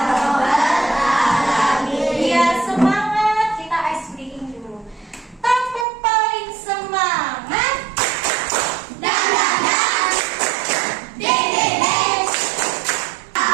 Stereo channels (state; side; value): drops out; left; at 5.9 s